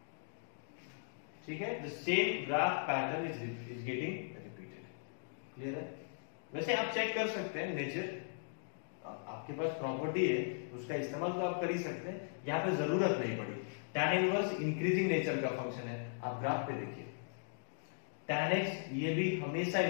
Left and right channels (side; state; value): right; silent; digital silence